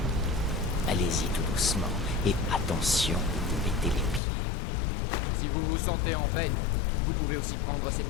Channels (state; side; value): drops out; right; at 4.2 s